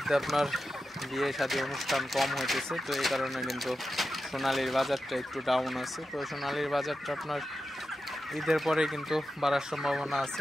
আপনার বিয়ে শাদী অনুষ্ঠান কম হইতেছে। তো এই কারণে কিন্তু সোনালীর বাজারটা একটু ডাউন আছে। তো সোনালীর বাজারটা আপনার ঈদের পরে কিন্তু বাড়ার সম্ভাবনা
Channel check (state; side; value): normal; both; correlation 0.91